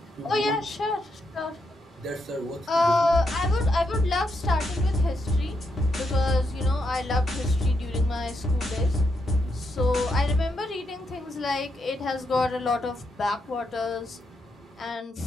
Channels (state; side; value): normal; both; correlation 0.81